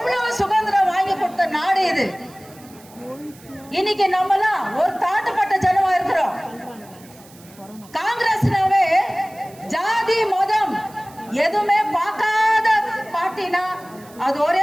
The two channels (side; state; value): right; noise; hiss, 24 dB below the sound